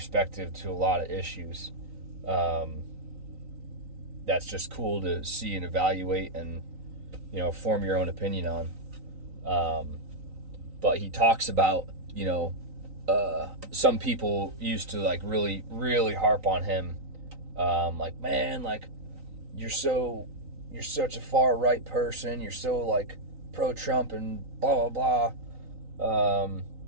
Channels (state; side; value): late; left; 3.9 ms